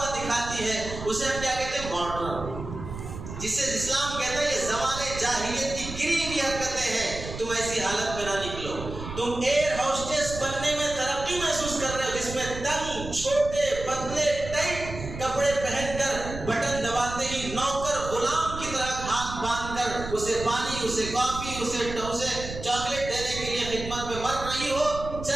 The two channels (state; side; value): noise; right; rumble, 9 dB below the sound